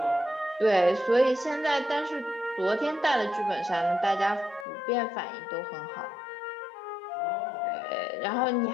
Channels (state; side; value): drops out; right; at 4.7 s